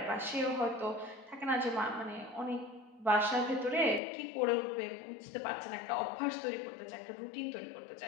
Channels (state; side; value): drops out; right; at 4.0 s